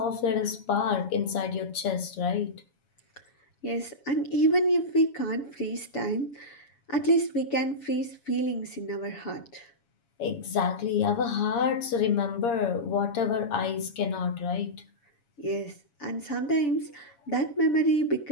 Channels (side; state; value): right; late; 7.2 ms